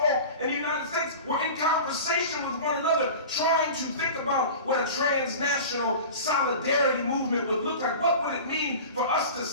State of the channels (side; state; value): both; inverted; correlation -0.35